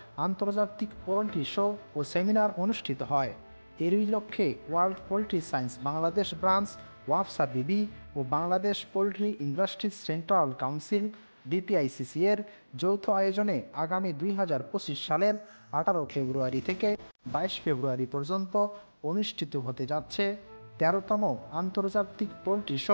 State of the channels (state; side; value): inverted; both; correlation -1.00